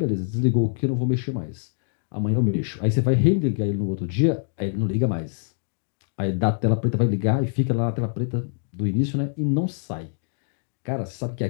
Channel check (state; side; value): silent; right; digital silence